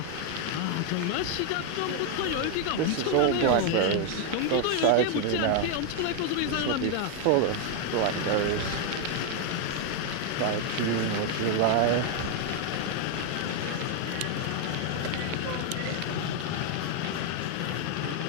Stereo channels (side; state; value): both; different; correlation 0.01